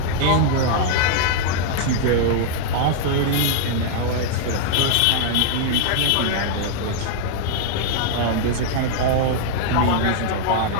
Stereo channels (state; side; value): different; both; correlation -0.01